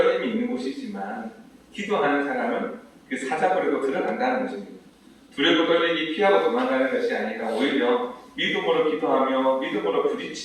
있는 곳이지만 기도하는 사람은 그 사자굴에도 들어간다는 것입니다. 두렵고 떨리기 피하고 도망가는 것이 아니라 오히려 믿음으로 기도하며 믿음으로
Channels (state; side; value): identical; both; correlation 1.00